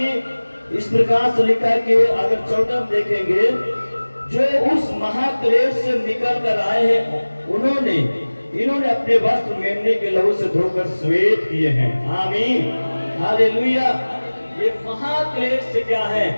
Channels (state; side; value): inverted; both; correlation -1.00